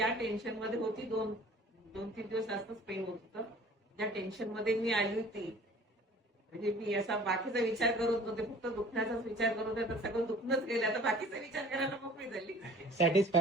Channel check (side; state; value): both; normal; correlation 0.49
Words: टेन्शन मध्ये होती दोन तीन दिवस जास्तच पेन होत होतं. ज्या टेन्शन मध्ये मी आली होती म्हणजे मी असा बाकीचा विचार करत नव्हते, फक्त दुखण्याचाच विचार करत होते. तर सगळं दुखणंच गेलं, आता बाकीचा विचार करायला मोकळी झाली.